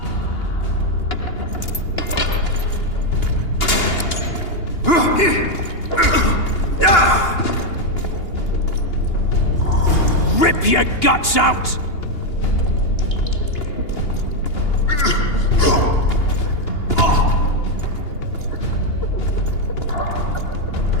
Rip your guts out!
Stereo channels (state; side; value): late; right; 2.9 ms